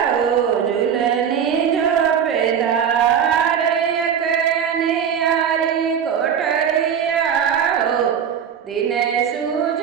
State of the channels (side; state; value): left; quieter; 8.0 dB